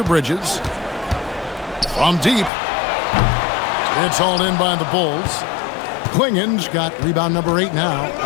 Bridges. From deep. It's hauled in by the Bulls. Klingen's got rebound number 8 now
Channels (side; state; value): right; drops out; at 2.5 s